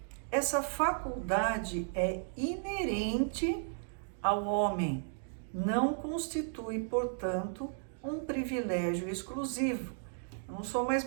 Essa faculdade é inerente ao homem, não constitui, portanto, um privilégio exclusivo. Eu não sou mais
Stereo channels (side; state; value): left; silent; digital silence